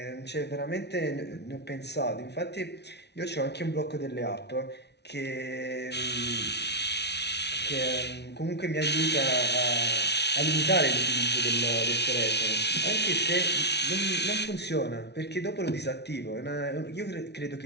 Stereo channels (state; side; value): late; right; 0.50 ms